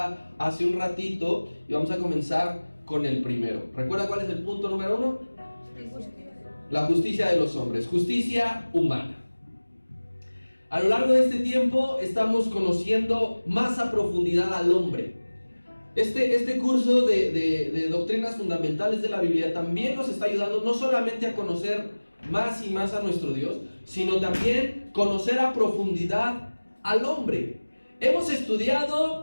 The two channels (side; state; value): both; inverted; correlation -1.00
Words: hace un ratito. Y vamos a comenzar con el primero. ¿Recuerda cuál es el punto número 1? La justicia de los hombres, justicia humana. A lo largo de este tiempo estamos conociendo más a profundidad al hombre. Este curso de doctrinas fundamentales de la Biblia también nos está ayudando no solamente a conocer más y más a nuestro Dios, sino también conocer a profundidad al hombre. Hemos